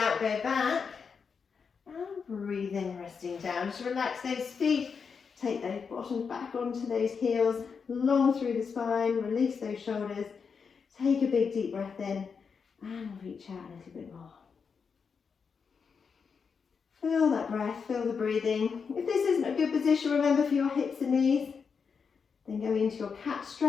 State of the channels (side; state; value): right; quieter; 5.8 dB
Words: go back. And breathe in, resting down. Just relax those feet. Take those bottoms back onto those heels, long through the spine. Release those shoulders. Take a big deep breath in and reach out a little bit more. Feel that breath, feel the breathing. If this isn't a good position, remember for your hips and knees, then go into your cat